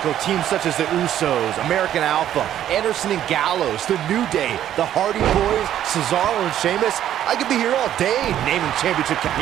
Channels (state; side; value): quieter; left; 11.2 dB